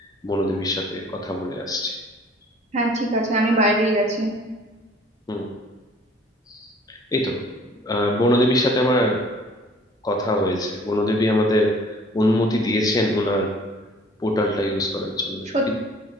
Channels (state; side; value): normal; both; correlation 0.53